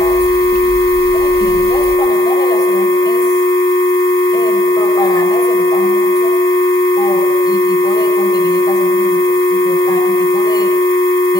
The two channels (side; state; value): both; normal; correlation 0.69